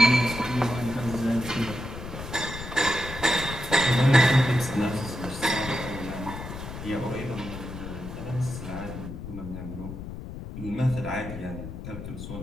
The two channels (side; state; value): left; noise; rumble, 9 dB below the sound